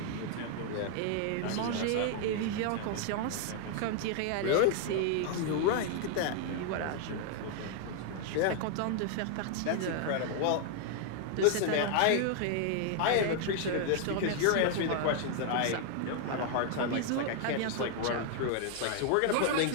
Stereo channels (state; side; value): different; both; correlation 0.00